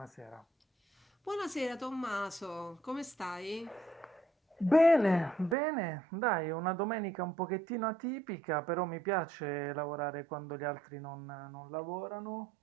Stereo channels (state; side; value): drops out; left; at 5.6 s